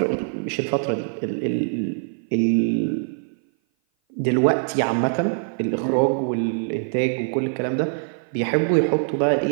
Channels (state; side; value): silent; left; 57 dB below the other